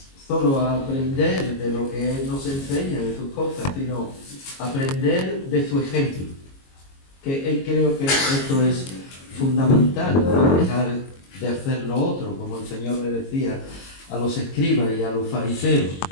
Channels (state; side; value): late; right; 22 ms